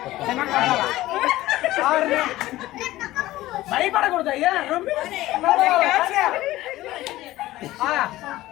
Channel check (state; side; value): quieter; right; 16.5 dB